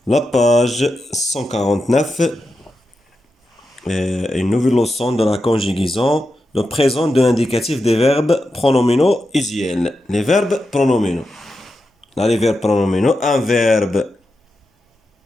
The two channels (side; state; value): both; normal; correlation 0.89